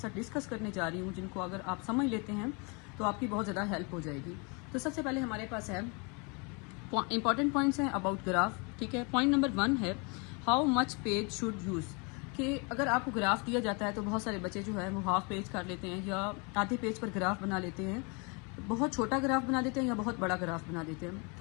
डिस्कस करने जा रही हूँ, जिनको अगर आप समझ लेते हैं तो आपकी बहुत ज़्यादा हेल्प हो जाएगी। तो सबसे पहले हमारे पास है इंपॉर्टेंट पॉइंट्स हैं अबाउट ग्राफ। ठीक है, पॉइंट नंबर 1 है how much page should use. कि अगर आपको ग्राफ दिया जाता है तो बहुत सारे बच्चे जो है वो हाफ पेज कर लेते हैं या आधे पेज पर ग्राफ बना लेते हैं, बहुत छोटा ग्राफ बना देते हैं या बहुत बड़ा ग्राफ बना देते हैं।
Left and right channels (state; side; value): quieter; right; 32.2 dB